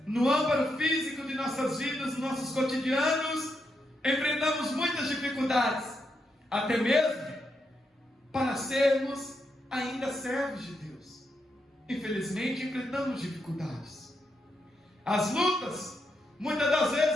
no âmbito físico de nossas vidas, nossos cotidianos. Enfrentamos muitas dificuldades, até mesmo para sermos ainda servos de Deus. Infelizmente, enfrentamos dificuldades. As lutas, muitas das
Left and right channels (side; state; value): both; normal; correlation 0.82